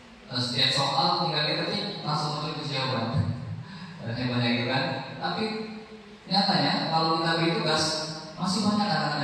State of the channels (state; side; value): identical; both; correlation 1.00